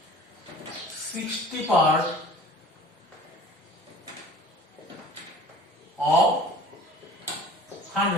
60 part of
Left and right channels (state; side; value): normal; both; correlation 0.45